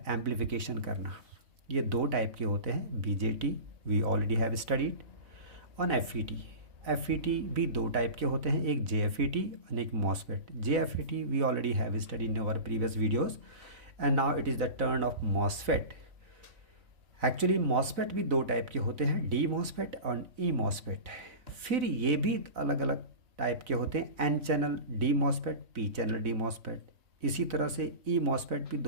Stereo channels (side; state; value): left; late; 4.0 ms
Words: एम्प्लीफिकेशन करना, ये दो टाइप के होते हैं। BJT we already have studied on FET. FET भी दो टाइप के होते हैं, एक जेएफईटी और एक MOSFET. JFET we already have studied in our previous videos and now it is the turn of MOSFET. Actually MOSFET भी दो टाइप के होते हैं, डी मॉसफेट और ई मॉसफेट। फिर ये भी अलग अलग टाइप के होते हैं, N channel D MOSFET, P channel D MOSFET. इसी तरह से ई मॉसफेट भी